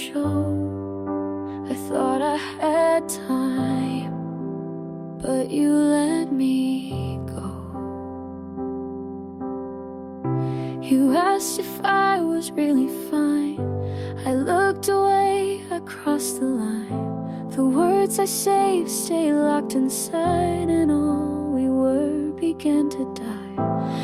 I thought I had time, but you let me go. You asked if I was really fine. I looked away, I crossed the line. The words I saved stay locked inside, and all we were began to die.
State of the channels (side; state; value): both; identical; correlation 1.00